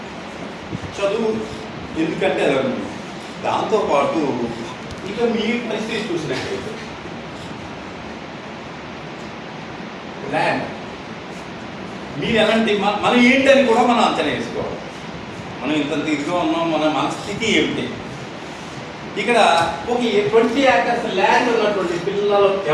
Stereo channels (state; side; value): identical; both; correlation 1.00